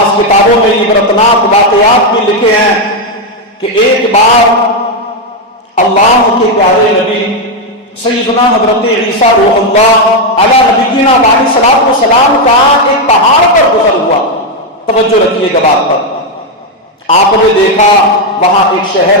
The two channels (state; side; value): normal; both; correlation 0.03